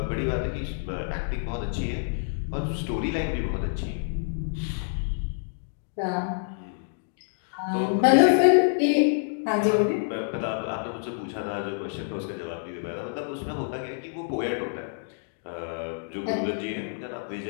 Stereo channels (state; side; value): silent; right; digital silence